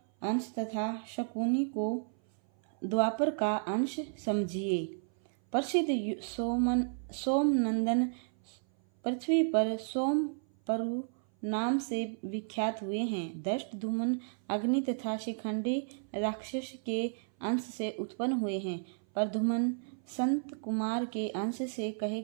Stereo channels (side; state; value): left; silent; 56 dB below the other